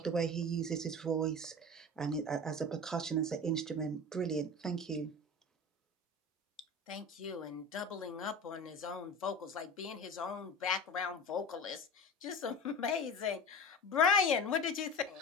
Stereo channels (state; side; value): normal; both; correlation 0.32